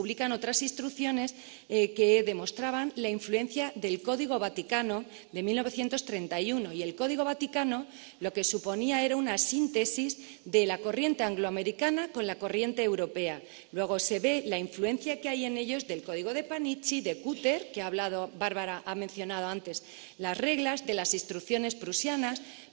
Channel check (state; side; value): quieter; left; 40.0 dB